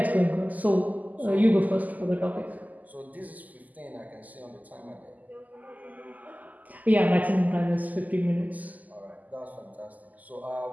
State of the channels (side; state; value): left; late; 0.079 ms